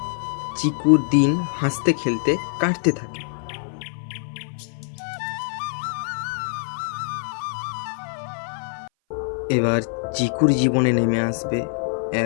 চিকুর দিন হাসতে খেলতে কাটতে থাকে। এবার চিকুর জীবনে নেমে আসবে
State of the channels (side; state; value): right; silent; 58 dB below the other